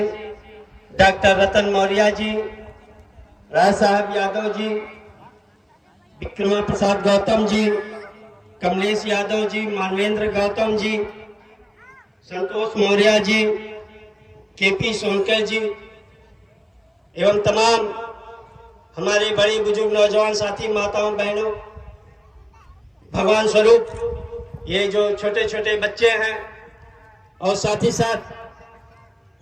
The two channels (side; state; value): both; identical; correlation 1.00